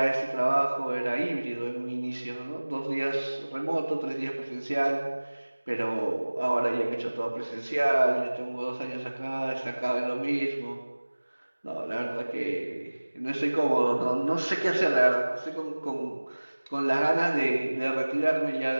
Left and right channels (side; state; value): both; inverted; correlation -1.00